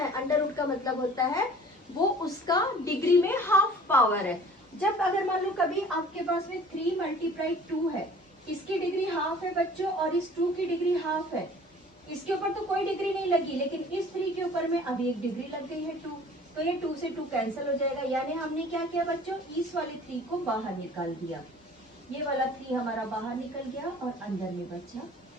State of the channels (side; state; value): both; normal; correlation 0.48